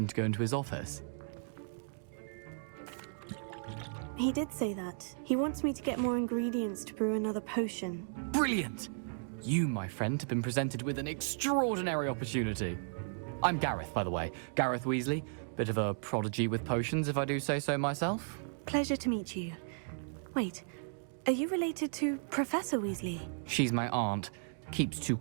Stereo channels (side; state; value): left; silent; digital silence